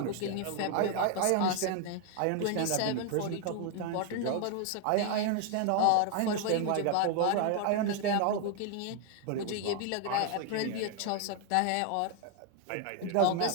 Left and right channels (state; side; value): different; both; correlation 0.00